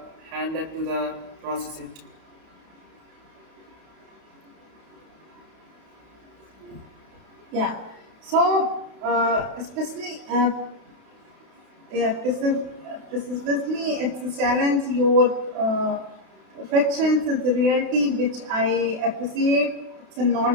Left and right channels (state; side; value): late; left; 32 ms